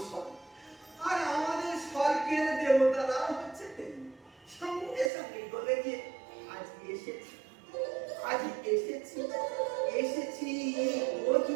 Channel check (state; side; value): drops out; left; at 5.1 s